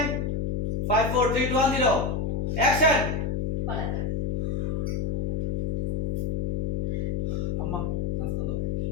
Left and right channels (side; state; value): left; noise; hum, 1 dB below the sound